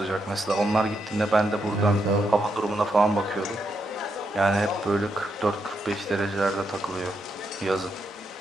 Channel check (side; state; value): both; normal; correlation 0.81